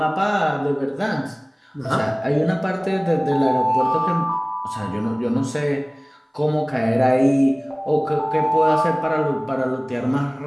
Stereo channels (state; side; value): identical; both; correlation 1.00